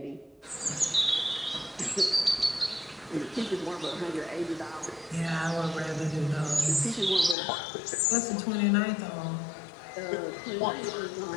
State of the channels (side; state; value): right; drops out; at 7.4 s